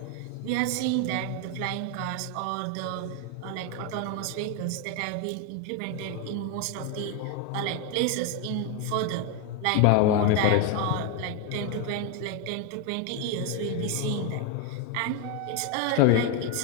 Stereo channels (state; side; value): different; both; correlation 0.01